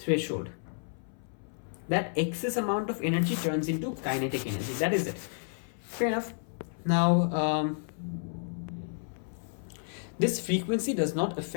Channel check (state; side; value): silent; right; 57 dB below the other